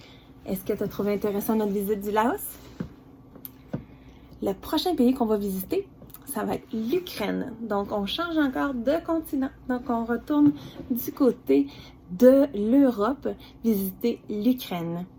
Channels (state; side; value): identical; both; correlation 1.00